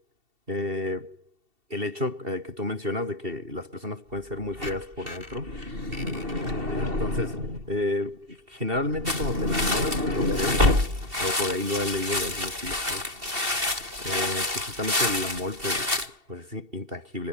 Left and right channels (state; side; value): late; left; 2.7 ms